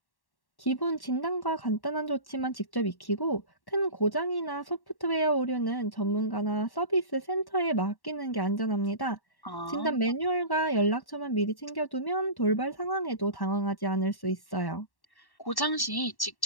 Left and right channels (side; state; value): right; late; 1.1 ms